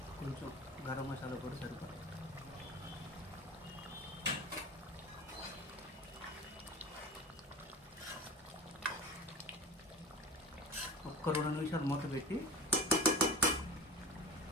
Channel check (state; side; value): normal; both; correlation 0.32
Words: కొంచెం గరం మసాలా కూడా సరిపడా. ఒక్క 2 నిమిషాలు మూత పెట్టి